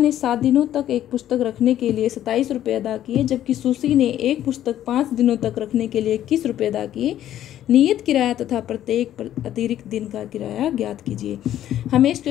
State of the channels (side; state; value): right; quieter; 11.9 dB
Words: 7 दिनों तक एक पुस्तक रखने के लिए 27 रुपये अदा किए, जबकि सुसी ने एक पुस्तक 5 दिनों तक रखने के लिए 21 रुपये अदा किए। नियत किराया तथा प्रत्येक अतिरिक्त दिन का किराया ज्ञात कीजिए। हमें इस